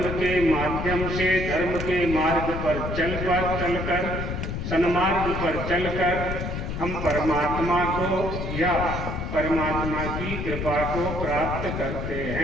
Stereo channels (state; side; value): noise; left; rumble, 4 dB below the sound